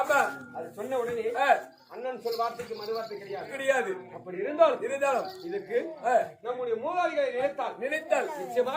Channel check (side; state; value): both; identical; correlation 1.00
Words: அது சொன்ன உடனே அண்ணன் சொல் வார்த்தைக்கு மறு வார்த்தை கிடையாது அப்படி இருந்தாலும் இதுக்கு நம்முடைய மூதாதிகளை நினைத்தால்